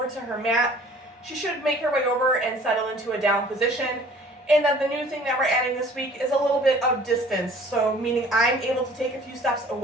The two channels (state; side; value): normal; both; correlation 0.51